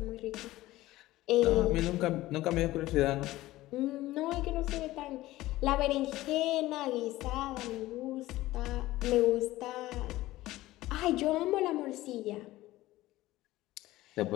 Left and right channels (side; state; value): right; quieter; 17.0 dB